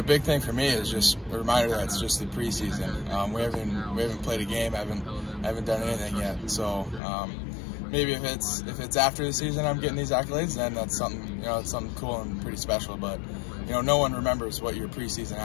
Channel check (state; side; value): drops out; right; at 7.0 s